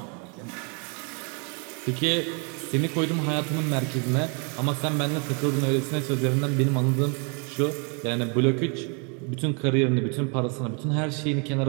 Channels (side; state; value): left; quieter; 35.8 dB